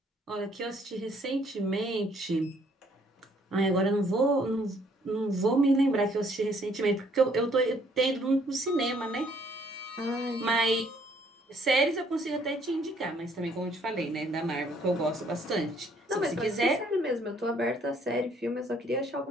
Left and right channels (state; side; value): normal; both; correlation 0.64